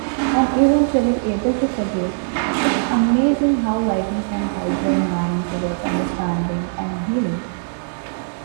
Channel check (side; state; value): left; silent; digital silence